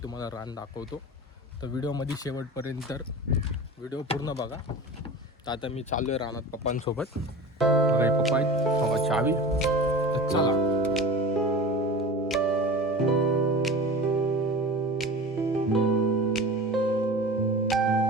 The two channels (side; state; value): both; normal; correlation 0.34